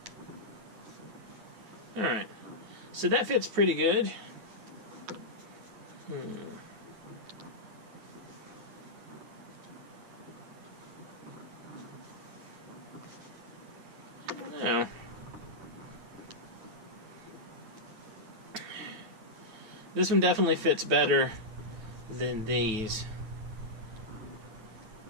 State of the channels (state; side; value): late; left; 9.1 ms